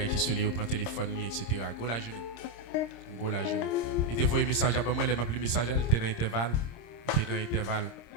qui se lit, il prend le téléphone, etc. Go la journée. Go la journée. Il te voit un message à moi, il m'a appelé le message, il était dans l'intervalle. Il était dans l'intervalle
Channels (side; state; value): right; late; 26 ms